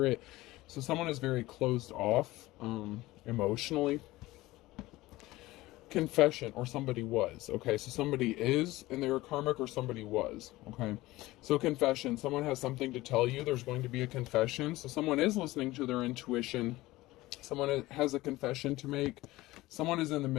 it. So someone is very closed off emotionally. Confession, or somebody was. Okay, so somebody is and they were karmic, or somebody was. Okay, so confession, someone has something to tell you. There's going to be a confession. So someone is listening to their intuition. Someone has a confession to make. Someone is in the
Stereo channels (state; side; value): quieter; right; 18.5 dB